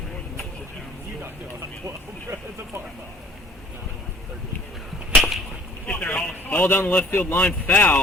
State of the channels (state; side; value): normal; both; correlation 0.55